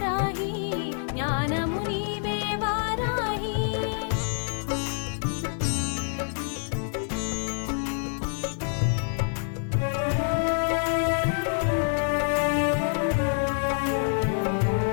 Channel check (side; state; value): right; silent; 55 dB below the other